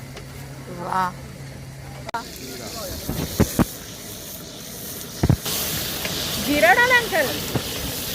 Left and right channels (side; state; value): both; identical; correlation 1.00